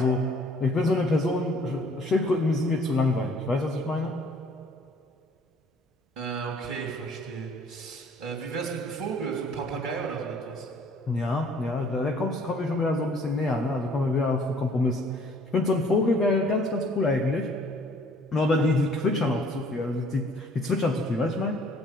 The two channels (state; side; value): normal; both; correlation 0.57